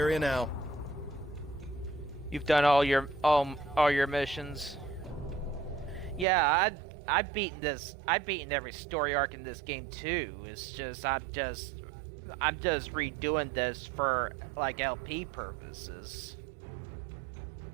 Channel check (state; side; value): drops out; left; at 6.2 s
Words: now. You've done all your missions. Yeah, I've beaten every story arc in this game too. It's just I'm just redoing this for like LP purposes.